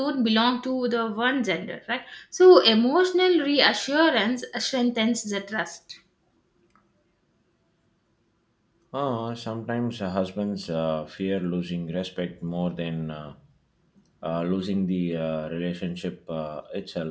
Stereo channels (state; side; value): identical; both; correlation 1.00